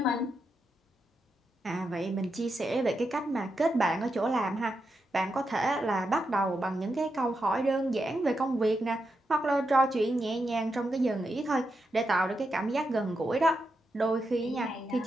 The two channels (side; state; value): both; normal; correlation 0.85